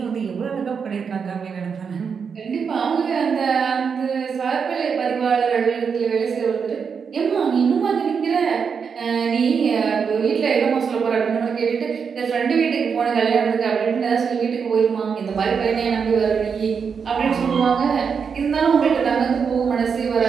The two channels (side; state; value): left; quieter; 6.2 dB